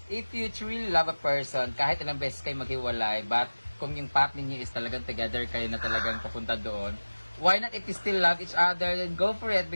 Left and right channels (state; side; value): inverted; both; correlation -1.00